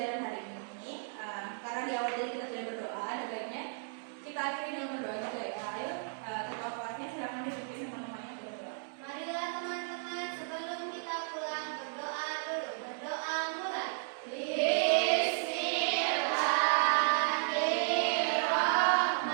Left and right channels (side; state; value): left; silent; digital silence